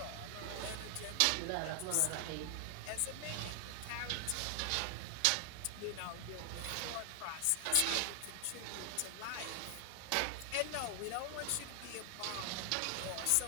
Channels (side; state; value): both; different; correlation 0.00